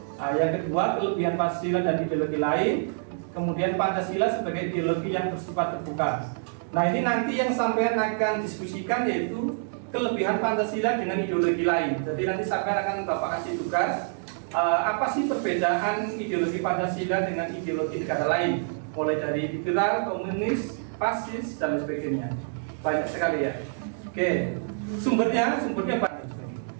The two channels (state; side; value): silent; left; digital silence